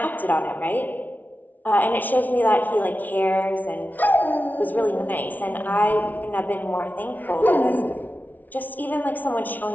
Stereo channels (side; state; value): right; late; 0.080 ms